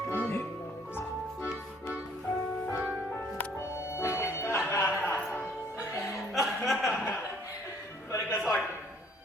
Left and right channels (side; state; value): both; normal; correlation 0.60